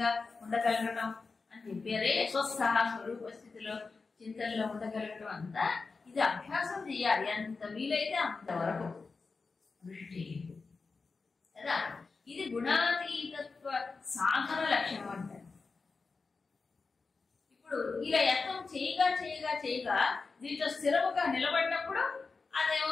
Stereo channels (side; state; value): right; quieter; 4.3 dB